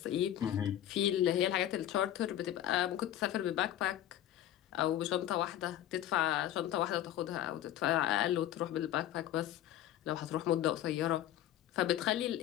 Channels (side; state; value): right; quieter; 12.1 dB